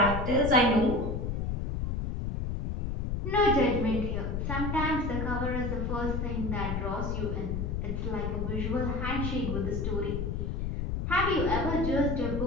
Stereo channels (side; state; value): left; noise; rumble, 2 dB below the sound